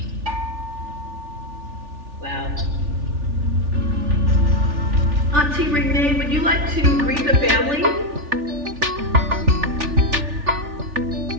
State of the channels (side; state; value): left; late; 3.4 ms